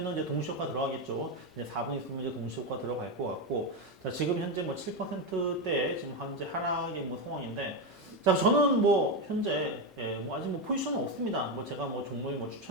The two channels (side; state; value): both; normal; correlation 0.10